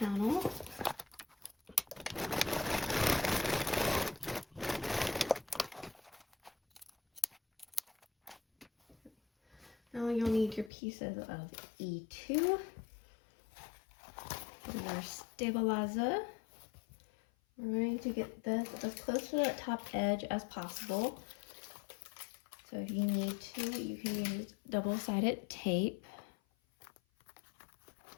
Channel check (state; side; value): drops out; right; at 10.7 s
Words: Now you'll need your pieces of E2 for your stabilizer. We're going to get this as close to that top edge as possible. So if you need to, you can use double-sided tape.